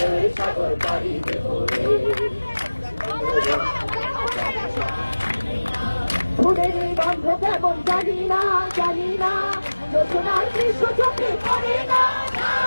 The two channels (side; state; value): both; inverted; correlation -1.00